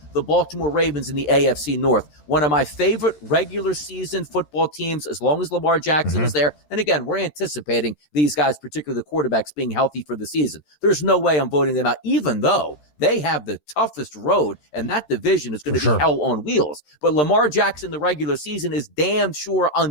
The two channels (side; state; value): right; late; 14 ms